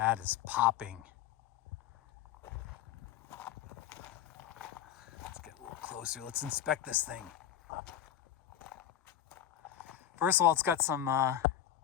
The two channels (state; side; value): quieter; right; 11.3 dB